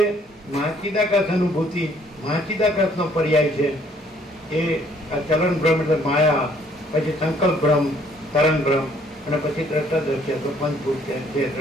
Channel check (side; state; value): both; normal; correlation 0.63